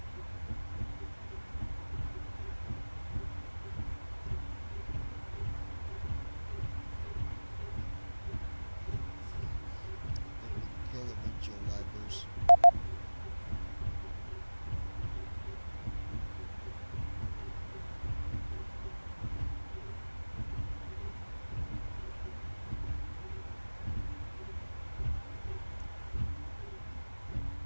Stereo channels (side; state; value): both; inverted; correlation -1.00